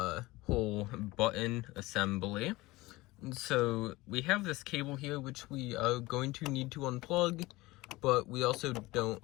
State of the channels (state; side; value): quieter; right; 20.3 dB